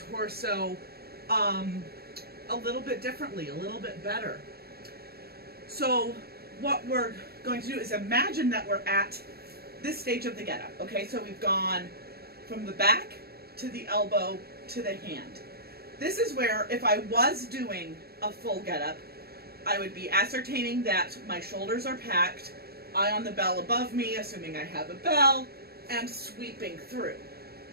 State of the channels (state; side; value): late; left; 0.46 ms